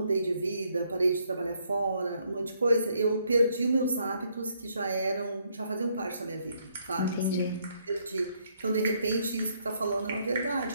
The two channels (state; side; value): inverted; both; correlation -0.71